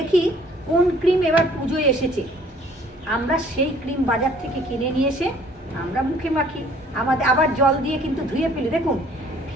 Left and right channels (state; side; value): normal; both; correlation 0.57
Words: কোন ক্রিম এবার পুজোয় এসেছে, আমরা সেই ক্রিম বাজার থেকে কিনে নিয়ে এসে আমরা মুখে মাখি, আমাদের আবার জল দিয়ে কিন্তু ধুয়ে ফেলি। দেখুন,